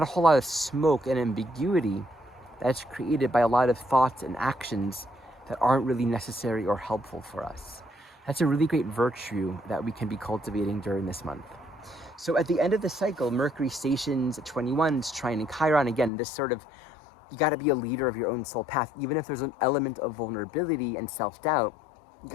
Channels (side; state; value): right; drops out; at 16.1 s